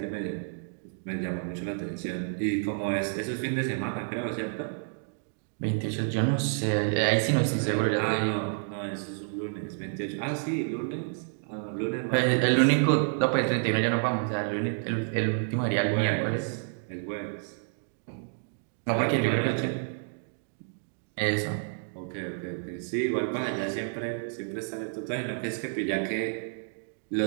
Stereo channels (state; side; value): silent; left; digital silence